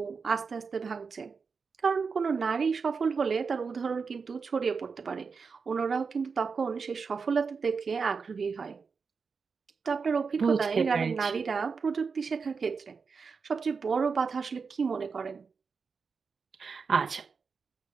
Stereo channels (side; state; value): left; quieter; 5.2 dB